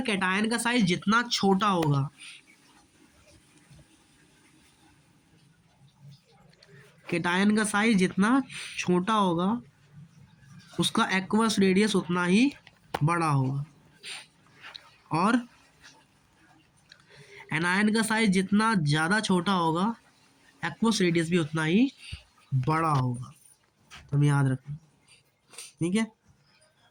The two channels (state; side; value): identical; both; correlation 1.00